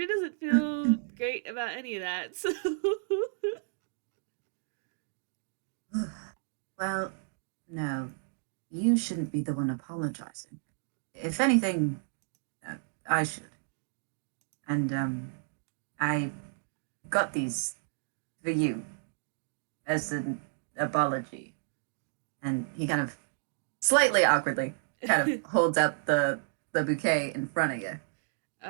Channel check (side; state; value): left; silent; digital silence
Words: doesn't feel great about any of that. So well, no, you shouldn't be the one apologizing. If anything, uh, I should. And, I got these for you as an apology. And he kind of slightly awkwardly kind of holds out the bouquet in front of you.